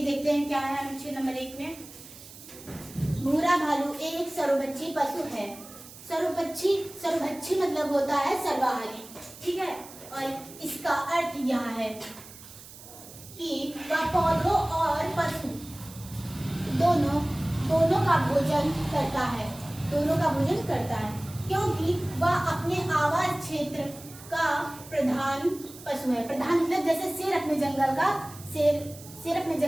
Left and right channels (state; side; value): noise; right; hiss, 17 dB below the sound